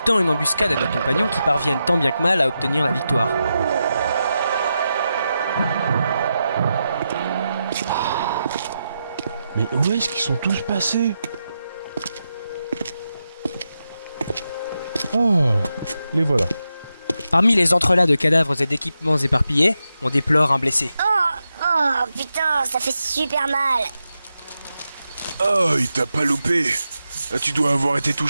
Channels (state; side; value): inverted; both; correlation -0.88